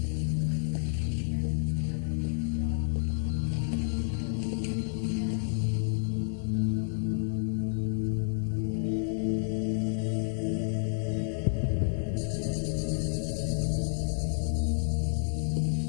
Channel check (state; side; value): silent; right; digital silence